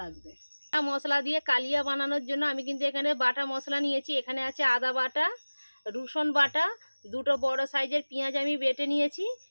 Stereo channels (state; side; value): inverted; both; correlation -1.00